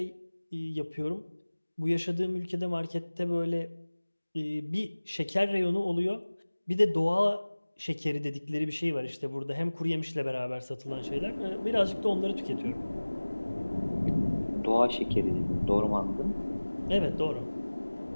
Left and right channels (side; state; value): both; inverted; correlation -1.00